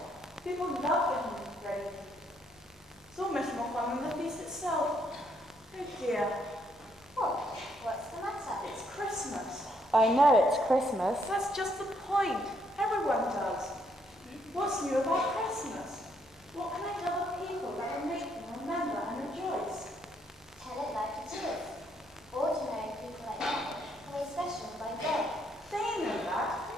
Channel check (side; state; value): both; normal; correlation 0.72